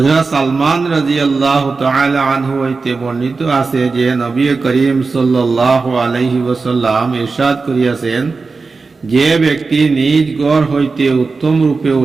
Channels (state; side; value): quieter; left; 4.2 dB